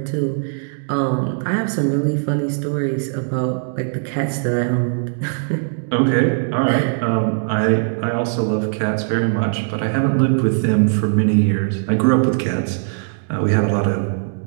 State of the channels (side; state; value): left; silent; digital silence